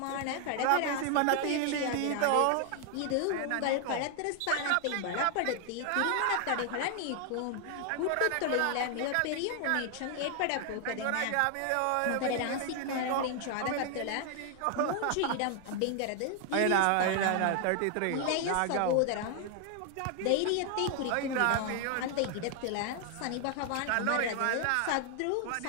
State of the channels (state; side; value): different; both; correlation 0.00